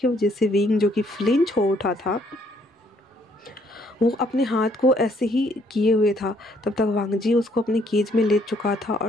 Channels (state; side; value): normal; both; correlation 0.67